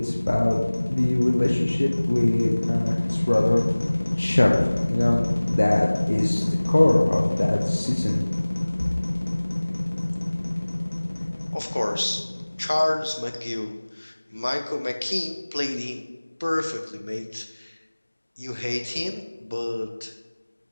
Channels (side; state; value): both; inverted; correlation -1.00